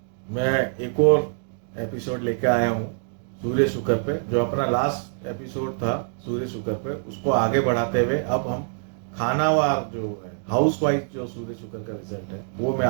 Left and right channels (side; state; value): left; silent; 58 dB below the other